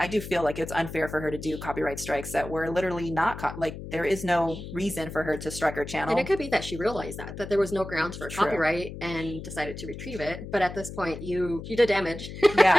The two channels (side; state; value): left; noise; hum, 10 dB below the sound